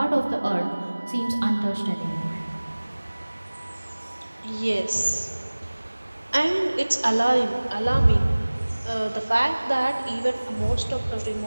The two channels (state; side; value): inverted; both; correlation -1.00